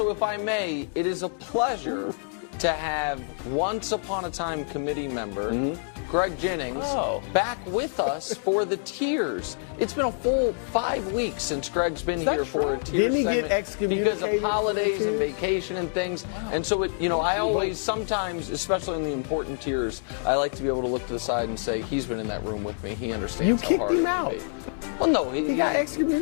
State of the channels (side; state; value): right; silent; digital silence